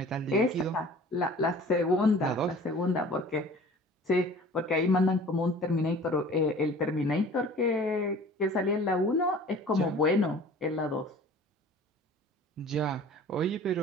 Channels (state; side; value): normal; both; correlation 0.46